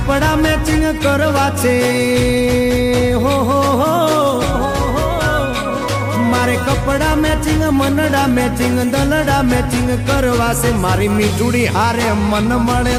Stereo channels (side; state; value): both; identical; correlation 1.00